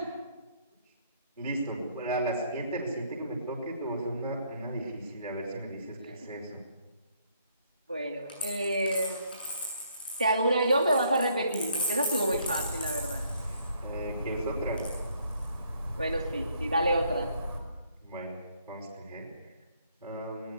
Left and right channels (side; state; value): both; inverted; correlation -0.68